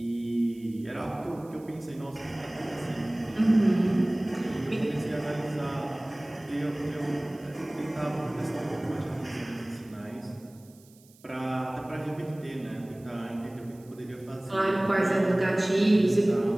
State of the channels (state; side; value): noise; right; hiss, 28 dB below the sound